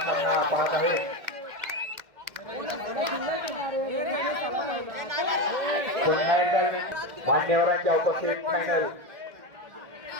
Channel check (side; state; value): left; late; 1.6 ms